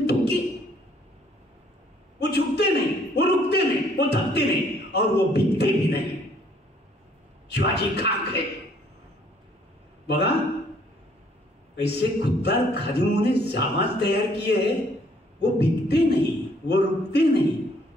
थूके. वो झुकते नहीं, वो रुकते नहीं, वो थकते नहीं और वो बिकते भी नहीं. शिवाजी खाक है. बघा ऐसे खुददार खादिमों ने जामाज तैयार किए हैं. वो बिकते नहीं, वो रुकते नहीं,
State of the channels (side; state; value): both; normal; correlation 0.63